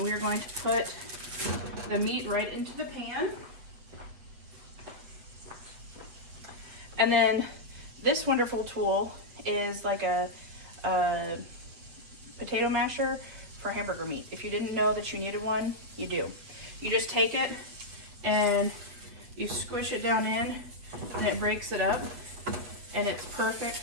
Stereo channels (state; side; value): late; left; 8.3 ms